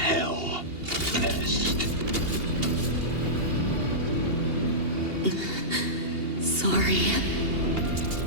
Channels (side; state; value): left; late; 2.8 ms